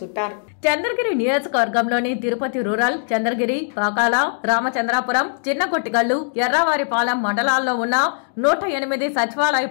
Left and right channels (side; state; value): right; silent; digital silence